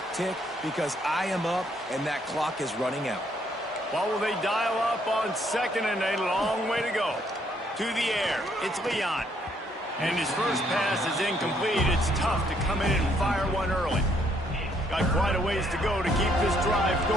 tick because I am up and that clock is running out. What will they dial up on second and a long way to go? To the air, it's Leon. And his first pass is incomplete. It's tough to come in and fire one early. Got quite a ways to go to keep this drive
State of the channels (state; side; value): normal; both; correlation 0.69